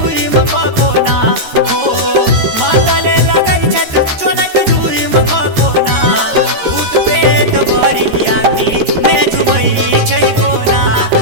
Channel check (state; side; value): late; left; 13 ms